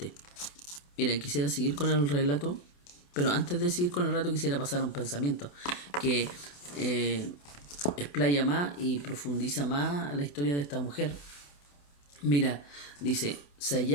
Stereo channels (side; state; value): right; late; 28 ms